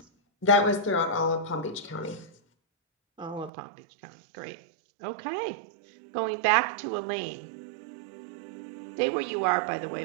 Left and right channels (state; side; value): drops out; left; at 3.5 s